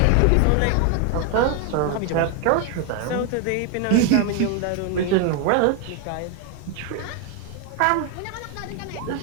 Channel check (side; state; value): both; different; correlation 0.01